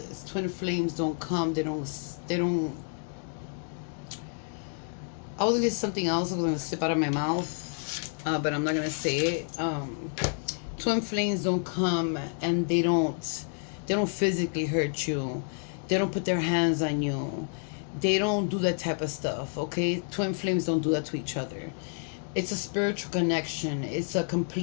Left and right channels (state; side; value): silent; right; 58 dB below the other